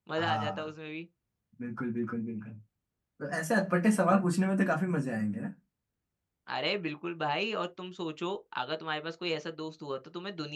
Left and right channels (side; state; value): both; identical; correlation 1.00